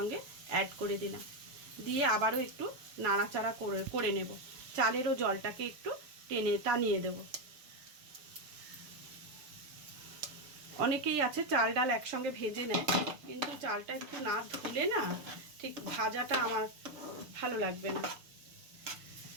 অ্যাড করে দিলাম। দিয়ে আবারও একটু নাড়াচাড়া করে নেব। চালেরও জলটাকে একটু টানিয়ে দেব। অনেকেই আছে চাল ডাল একসঙ্গে ভেজে নেয়, কিন্তু চালটা একটু না ধুলে না ঠিক ভাজাটা আমার ভালো লাগবে না।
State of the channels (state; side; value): late; left; 6.8 ms